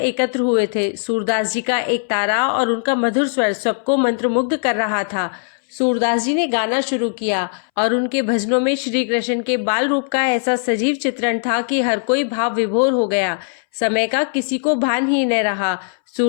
हुए थे। सूरदास जी का एक तारा और उनका मधुर स्वर सबको मंत्रमुग्ध कर रहा था। सूरदास जी ने गाना शुरू किया और उनके भजनों में श्री कृष्ण के बाल रूप का ऐसा सजीव चित्रण था कि हर कोई भाव विभोर हो गया। समय का किसी को भान ही न रहा।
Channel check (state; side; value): silent; right; 64 dB below the other